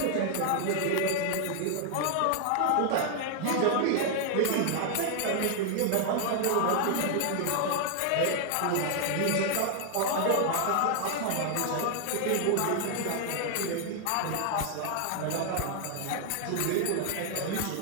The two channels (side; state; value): both; different; correlation 0.00